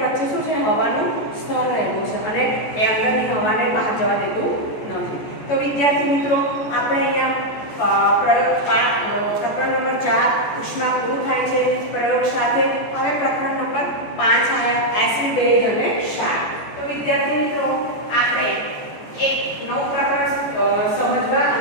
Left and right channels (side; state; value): right; late; 14 ms